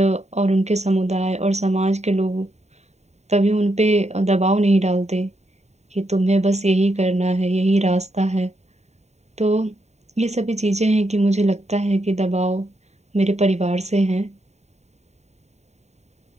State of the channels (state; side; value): late; left; 0.32 ms